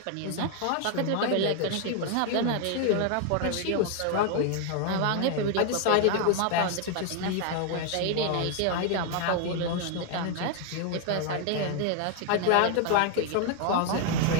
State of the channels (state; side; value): different; both; correlation 0.00